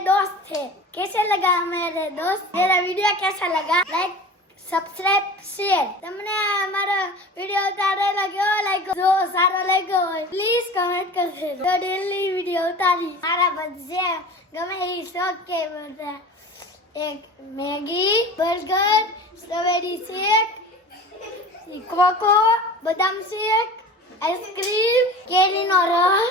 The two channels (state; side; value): normal; both; correlation 0.37